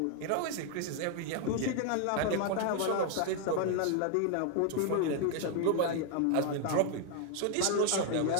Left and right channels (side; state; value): both; different; correlation 0.00